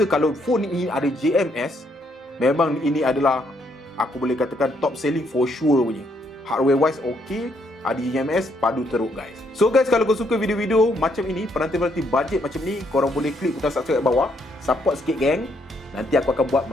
kalau phone ini ada JMS, memang ini adalah, aku boleh katakan, top selling for sure punya. Hardware wise okay, ada JMS, padu teruk guys. So guys, kalau kau suka video-video macam ini, penanti-penanti budget macam ni, korang boleh klik butang subscribe kat bawah. Support sikit geng. Nanti aku akan buat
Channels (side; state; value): both; normal; correlation 0.73